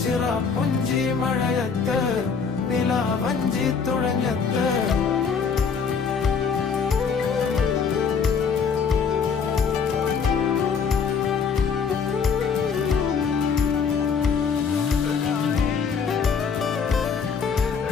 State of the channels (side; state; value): right; quieter; 5.9 dB